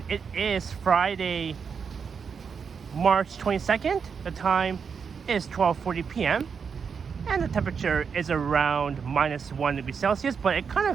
it is Friday, March 22nd. The time is 12:40 p.m. and the temperature is around -1 degree Celsius, but it kind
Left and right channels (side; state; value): left; quieter; 6.2 dB